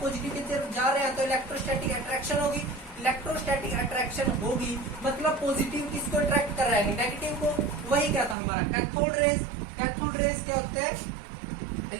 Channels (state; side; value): drops out; left; at 8.3 s